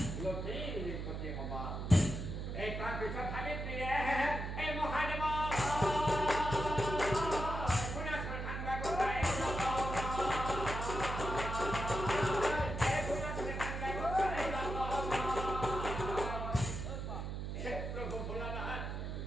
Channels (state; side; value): noise; right; hum, 4 dB below the sound